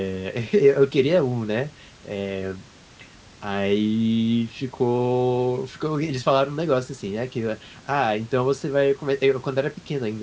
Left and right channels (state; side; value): identical; both; correlation 1.00